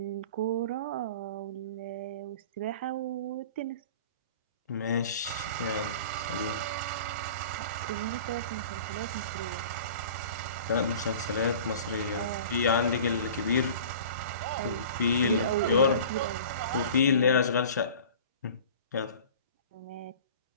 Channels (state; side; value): inverted; both; correlation -0.42